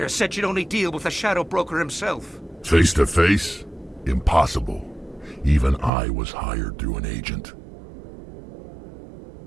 Said she'd only deal with the Shadow Broker himself. Face to face? Impossible. Even I was hired through an agent.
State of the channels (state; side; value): drops out; left; at 5.9 s